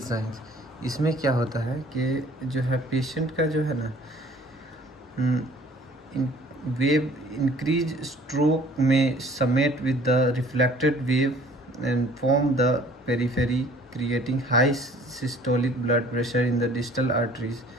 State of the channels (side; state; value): both; normal; correlation 0.53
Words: इसमें क्या होता है कि जो है पेशेंट का जो है ना वेव इंक्रीज स्ट्रोक में समेट with the reflected wave and form the periphery, creating high systolic blood pressure in the distal arteries.